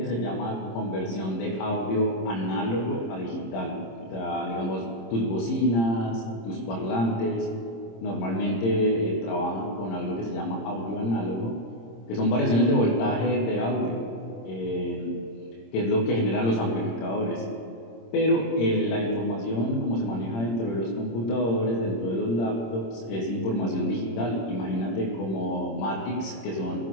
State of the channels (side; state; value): right; late; 26 ms